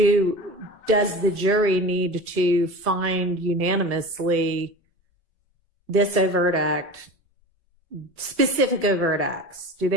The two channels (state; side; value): normal; both; correlation 0.33